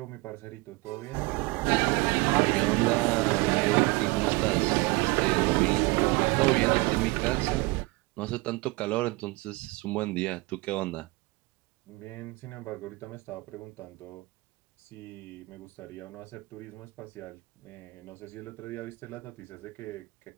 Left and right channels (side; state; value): left; quieter; 24.1 dB